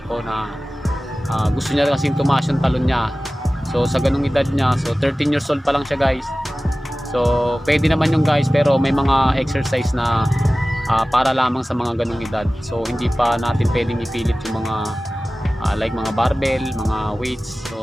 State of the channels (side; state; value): both; normal; correlation 0.97